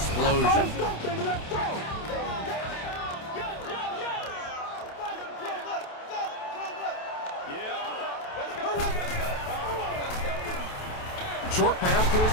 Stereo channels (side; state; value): right; late; 28 ms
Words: Short pass to